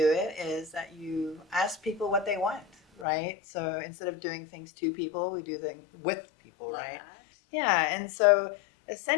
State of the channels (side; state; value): right; drops out; at 3.1 s